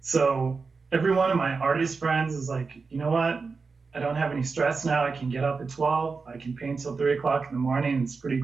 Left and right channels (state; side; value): quieter; left; 4.6 dB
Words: So every one of my artist friends is like, you know what? I don't have any stress now. I can get up at 12. I can paint till 3 o'clock in the morning. It's pretty